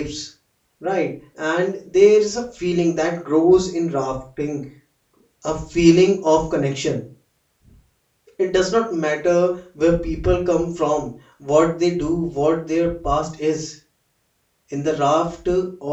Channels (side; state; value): both; identical; correlation 1.00